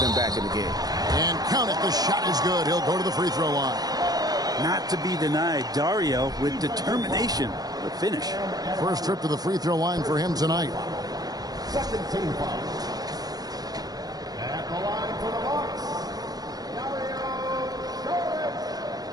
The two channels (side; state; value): left; late; 0.19 ms